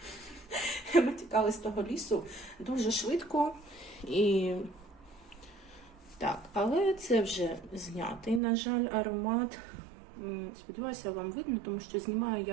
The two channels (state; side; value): drops out; left; at 8.4 s